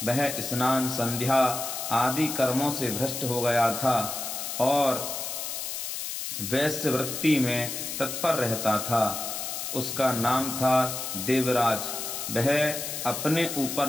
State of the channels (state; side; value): noise; left; hiss, 5 dB below the sound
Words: वह स्नान, संध्या आदि कर्मों से भ्रष्ट हो गया था और वैश्य वृत्ति में तत्पर रहता था। उसका नाम था देवराज। वह अपने ऊपर